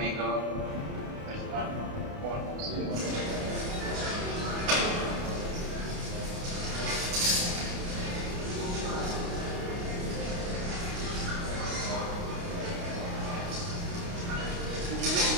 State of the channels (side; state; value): left; late; 29 ms